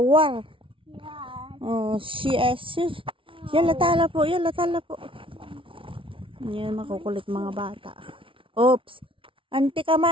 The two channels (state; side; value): late; left; 0.25 ms